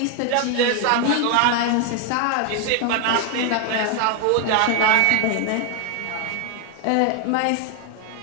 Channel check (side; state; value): both; different; correlation 0.01